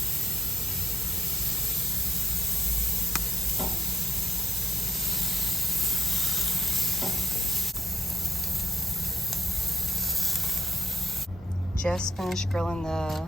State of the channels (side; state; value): both; normal; correlation 0.77